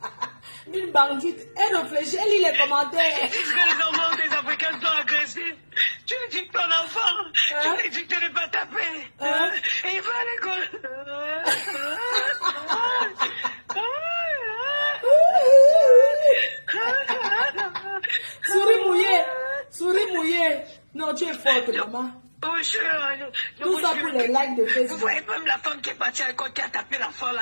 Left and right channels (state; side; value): inverted; both; correlation -1.00